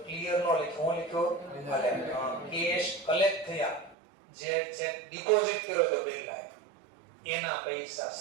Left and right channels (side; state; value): left; drops out; at 4.0 s